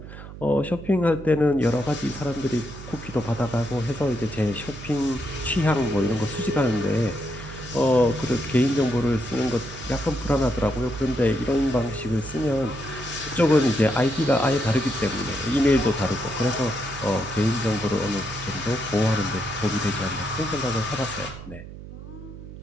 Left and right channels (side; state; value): right; noise; hum, 13 dB below the sound